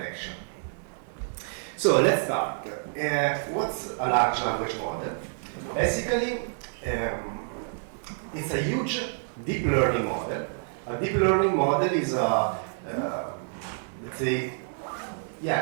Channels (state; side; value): silent; left; digital silence